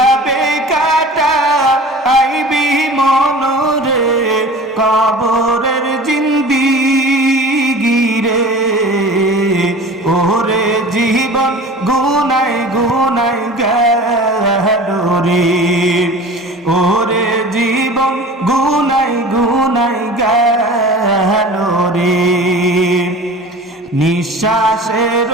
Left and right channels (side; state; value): both; normal; correlation 0.39